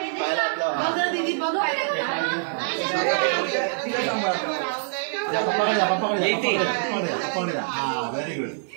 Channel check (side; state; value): left; silent; 62 dB below the other